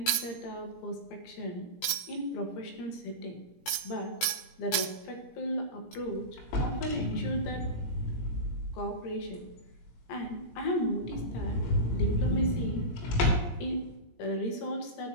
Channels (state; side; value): late; right; 17 ms